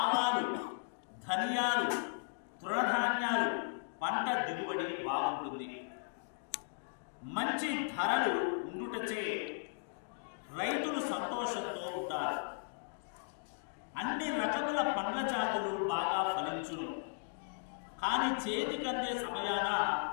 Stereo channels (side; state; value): right; silent; digital silence